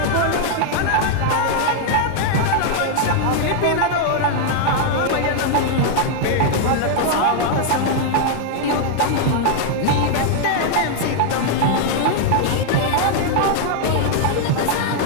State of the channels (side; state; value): both; different; correlation 0.00